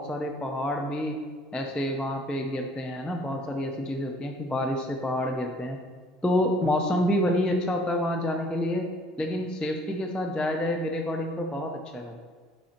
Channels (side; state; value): both; normal; correlation 0.58